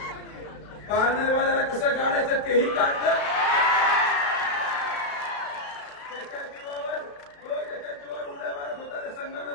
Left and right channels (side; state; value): right; late; 35 ms